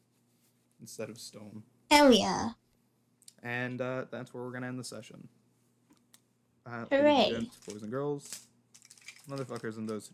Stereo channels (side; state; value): both; identical; correlation 1.00